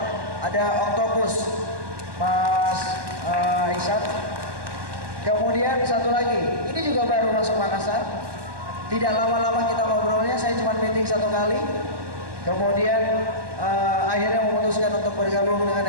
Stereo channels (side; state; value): left; late; 1.2 ms